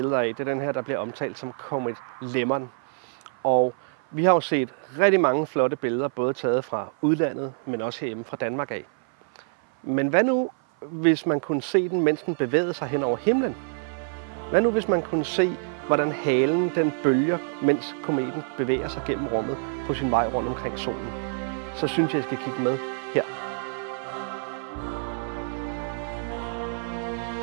af, det er den her, der bliver omtalt som Comet Lemon. Og vi har jo set rigtig mange flotte billeder, både taget fra udlandet, men også herhjemme fra Danmark af. Men hvad nu, hvis man kunne se den, mens den bevægede sig hen over himlen? Hvad nu, hvis man kunne se, hvordan halen den bølger, mens kometen bevæger sig gennem rummet på sin vej rundt omkring solen? Så synes jeg, I skal kigge med.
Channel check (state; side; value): silent; left; 56 dB below the other